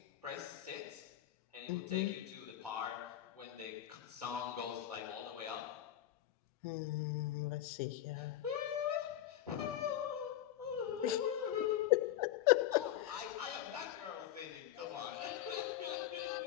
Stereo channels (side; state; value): right; quieter; 12.3 dB